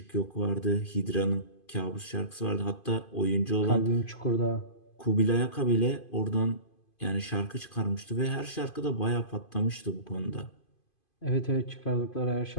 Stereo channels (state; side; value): late; right; 2.5 ms